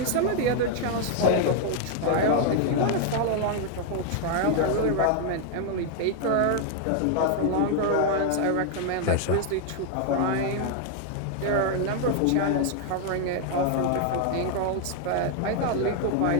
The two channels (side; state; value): both; different; correlation 0.00